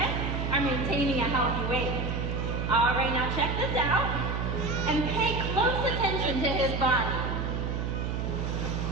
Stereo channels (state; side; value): noise; right; hum, 1 dB below the sound